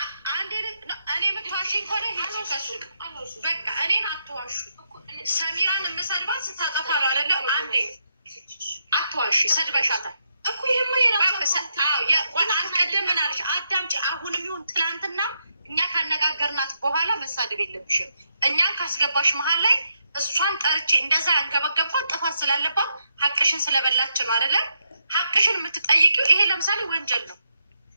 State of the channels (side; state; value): both; inverted; correlation -0.80